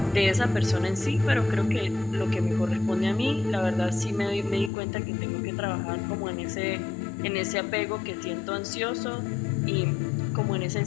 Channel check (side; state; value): right; drops out; at 4.7 s